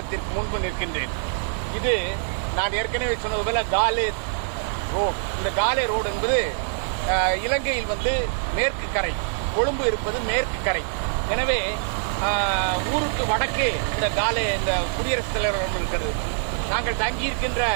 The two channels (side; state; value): left; silent; digital silence